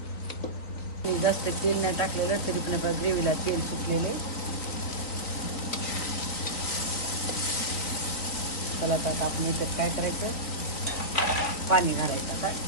जास्त तेल नाही टाकलेलं तरी पण आपल्या ग्रेव्हीला तेल सुटलेले. चला आता आपण इथं काय करायचं, पाणी घालायचं.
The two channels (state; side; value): late; right; 3.6 ms